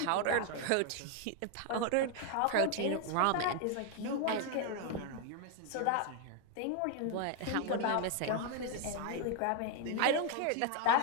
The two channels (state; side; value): different; both; correlation 0.00